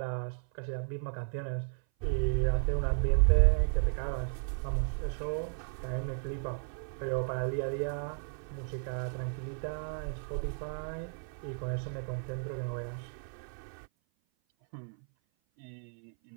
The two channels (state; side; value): silent; left; 55 dB below the other